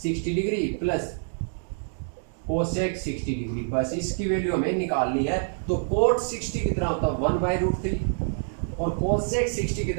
degree plus cosec 60 degree, बस इसकी वैल्यू हमें निकालनी है। तो कोट 60 कितना होता है? 1/√3। और कोसेक 60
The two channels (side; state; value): left; silent; digital silence